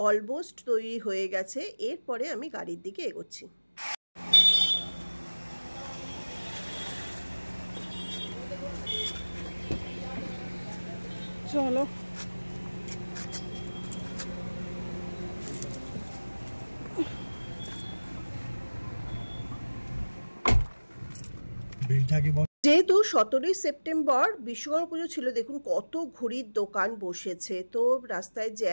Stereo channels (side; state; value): both; inverted; correlation -1.00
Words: অলমোস্ট তৈরি হয়ে গেছে। এরপরে আমি গাড়ির দিকে এগোচ্ছি। চলো যেহেতু 17ই সেপ্টেম্বর বিশ্বকর্মা পুজো ছিল, দেখুন কত ঘুড়ির দোকান বসেছে, তো রাস্তায়